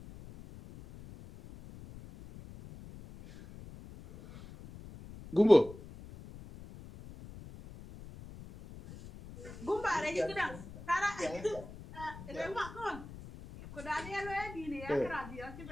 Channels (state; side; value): noise; left; rumble, 15 dB below the sound